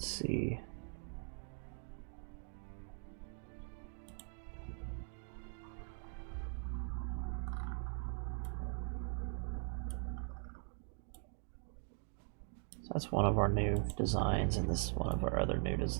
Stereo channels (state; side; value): silent; left; 50 dB below the other